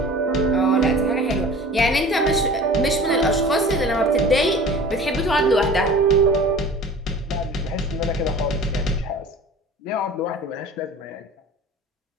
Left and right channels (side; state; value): both; normal; correlation 0.42